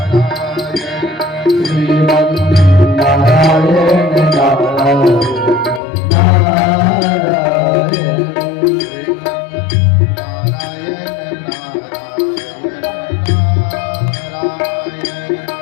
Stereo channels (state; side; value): drops out; right; at 5.8 s